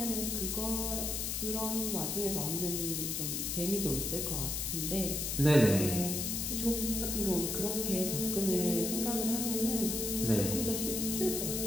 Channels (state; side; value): noise; left; hiss, 1 dB below the sound